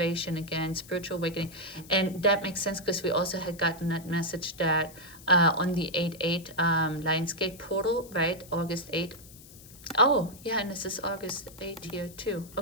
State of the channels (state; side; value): noise; left; hiss, 20 dB below the sound